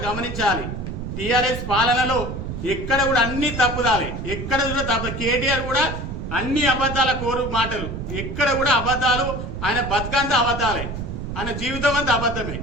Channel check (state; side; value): noise; right; rumble, 6 dB below the sound